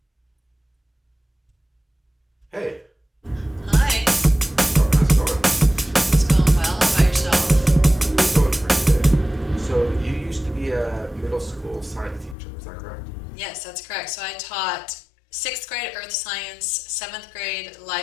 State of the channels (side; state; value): right; drops out; at 12.4 s